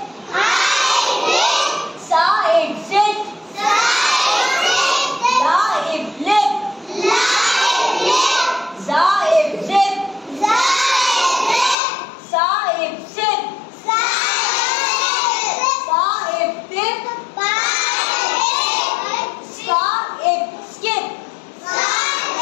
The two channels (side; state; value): right; drops out; at 11.8 s